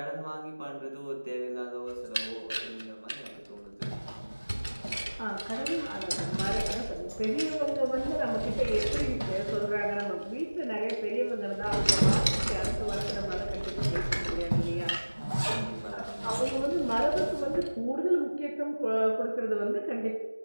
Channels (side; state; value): both; inverted; correlation -1.00